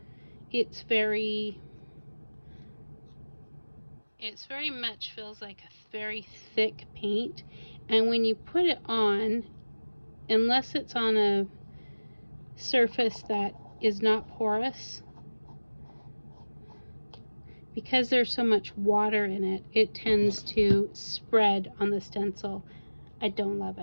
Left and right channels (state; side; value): inverted; both; correlation -1.00